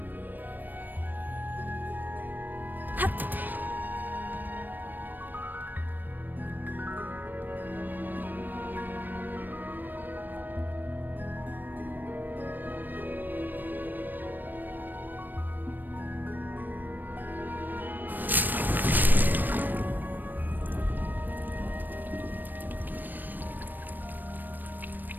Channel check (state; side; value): late; left; 0.090 ms